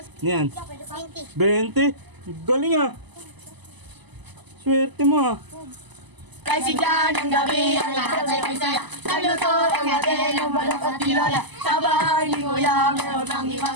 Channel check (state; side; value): late; left; 1.0 ms